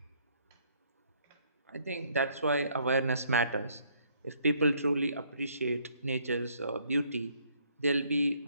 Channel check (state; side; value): inverted; both; correlation -0.65